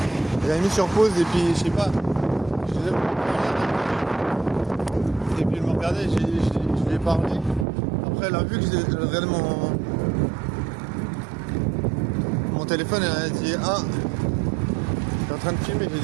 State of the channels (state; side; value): drops out; left; at 7.7 s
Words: J'avais mis sur pause et puis je sais pas, et puis elle me regardait, je lui ai parlé. Après elle a vu que j'ai regardé mon téléphone, elle a dit ah, t'es en train de filmer, j'ai